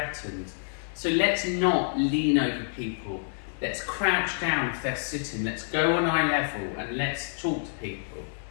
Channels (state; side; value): silent; right; digital silence